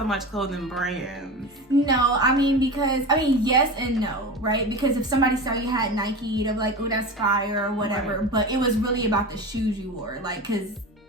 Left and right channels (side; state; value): both; normal; correlation 0.28